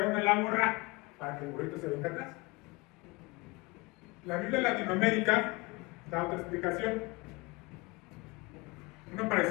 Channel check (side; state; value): right; quieter; 24.7 dB